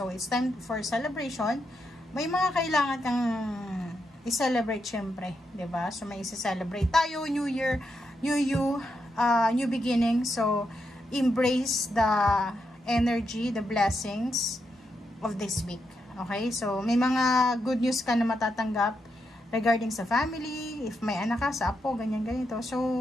it's time for celebration. May mga kailangan kang i-celebrate syempre, 'di ba? So may i-celebrate tayo, New Year, new you, new beginning. So embrace the energy, the blessings of this week. Okay? So may mga good news ka na matatanggap regarding sa family, if may anak ka, sa apo, ganyan ganito.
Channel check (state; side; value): normal; both; correlation 0.83